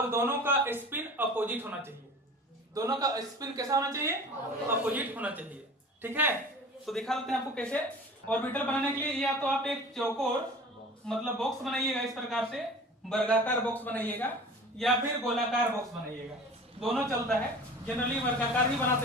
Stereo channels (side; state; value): both; normal; correlation 0.40